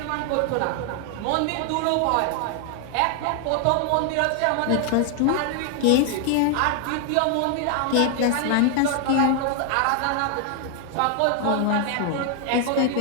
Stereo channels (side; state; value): both; different; correlation 0.00